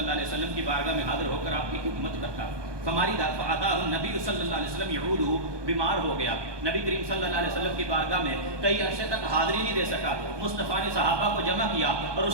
علیہ وسلم کی بارگاہ میں حاضر ہو کر آپ کی خدمت کرتا. ہماری فاتاہ نبی صلی اللہ علیہ وسلم یعودہ, بیمار ہو گیا. نبی کریم صلی اللہ علیہ وسلم کی بارگاہ میں کئی عرصے تک حاضری نہیں دے سکا. مصطفیٰ نے صحابہ کو جمع کیا اور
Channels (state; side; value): late; left; 1.2 ms